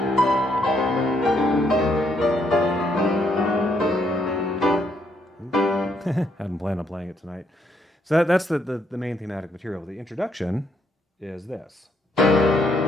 hadn't planned on playing it tonight. So that's the main thematic material. The introduction is this.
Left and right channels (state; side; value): normal; both; correlation 0.73